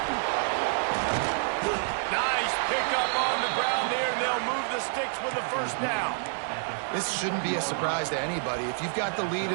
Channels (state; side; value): silent; left; digital silence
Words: Nice pickup on the ground there. They'll move the sticks with the first down. This shouldn't be a surprise to anybody. If you've got the lead